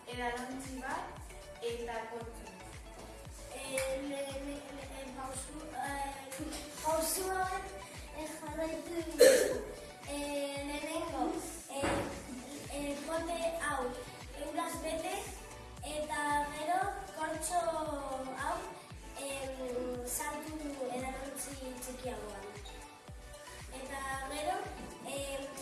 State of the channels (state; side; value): identical; both; correlation 1.00